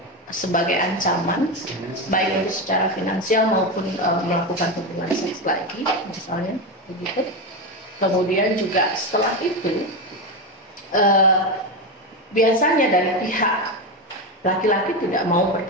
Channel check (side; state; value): both; normal; correlation 0.14